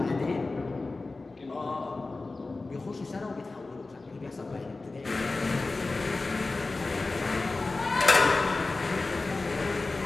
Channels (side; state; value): right; quieter; 3.5 dB